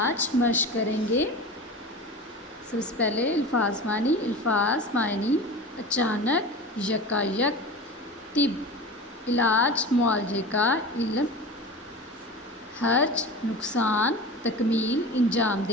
مشق کریں گے۔ سب سے پہلے الفاظ معنی اچانک، یکایک، طب علاج معالجے کا علم، حرج نقصان، تکمیل انجام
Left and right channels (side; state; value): both; normal; correlation 0.32